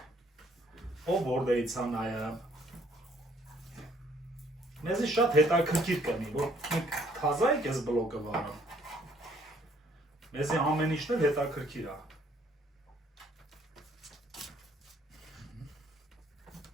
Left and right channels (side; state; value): both; normal; correlation 0.64